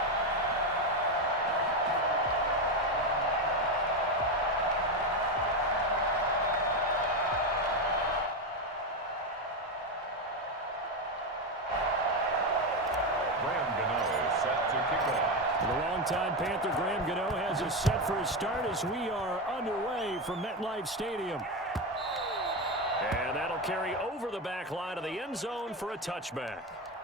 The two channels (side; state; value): both; normal; correlation 0.12